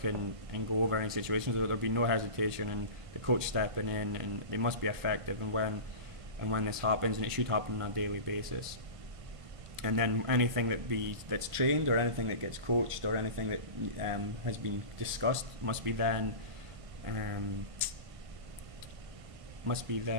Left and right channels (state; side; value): late; left; 1.5 ms